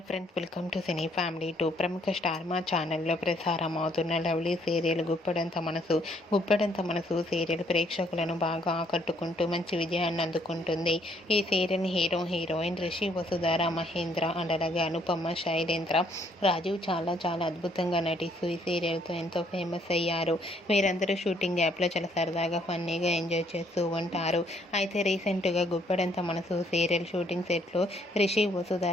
friends, welcome to cine family two. ప్రముఖ star మా ఛానల్లో ప్రసారం అవుతున్న లవ్లీ సీరియల్ గుప్పెడంత మనసు సీరియల్ ప్రేక్షకులను బాగా ఆకట్టుకుంటూ మంచి విజయాన్ని అందుకుంటుంది. ఈ serial heroine Rishi, Vasudhara, Mahendra and అలాగే అనుపమ, శైలేంద్ర, రాజీవ్ చాలా చాలా అద్భుతంగా నటిస్తూ ఈ సీరియల్తో ఎంతో ఫేమస్ అయ్యారు. వీరందరూ షూటింగ్ యాప్లో చాలా సరదాగా ఫన్నీగా ఎంజాయ్ చేస్తూ ఉంటారు. అయితే రీసెంట్గా గుప్పెడంత మనసు సీరియల్ షూటింగ్ సెట్లో రిషి,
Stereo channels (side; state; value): both; normal; correlation 0.67